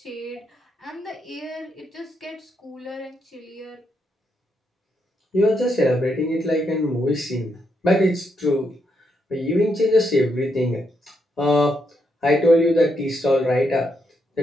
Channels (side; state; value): both; normal; correlation 0.79